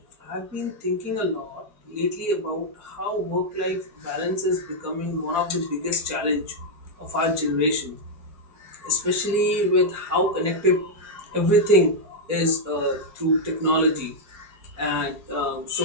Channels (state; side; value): late; left; 4.4 ms